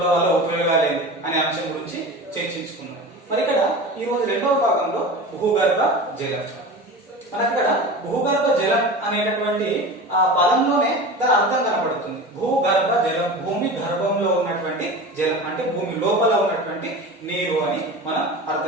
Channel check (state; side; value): normal; both; correlation 0.32